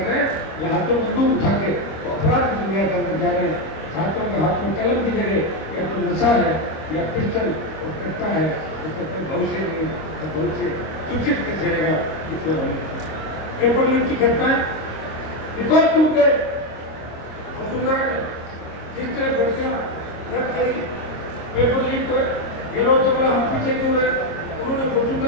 रहे हैं या हाथों में बंदूक उठा के अपराध की दुनिया के अंदर जा रहे हैं। छात्रों के हाथ में कलम की जगह या तो नशा है या पिस्टल और कट्टा है, तो कहते हैं भविष्य नहीं, तो भविष्य सूचित कैसे रहेगा? इसलिए पेपर लीक की घटनाएं रिकॉर्ड टूट गए। वसुंधरा ने जिस तरह भर्तियां रद्द करी, पेपर लीक हुए, ये लोग तो बोला हम पीछे क्यों रहे? उन्होंने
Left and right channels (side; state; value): right; late; 25 ms